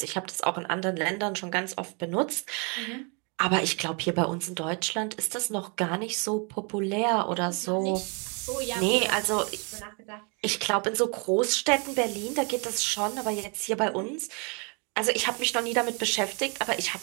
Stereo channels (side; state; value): left; quieter; 34.1 dB